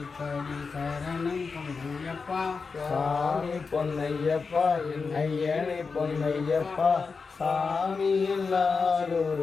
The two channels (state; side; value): quieter; right; 4.8 dB